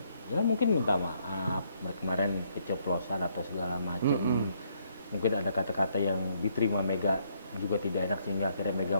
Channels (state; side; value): inverted; both; correlation -0.71